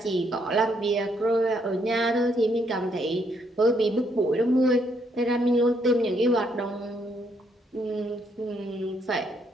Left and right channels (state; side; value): normal; both; correlation 0.72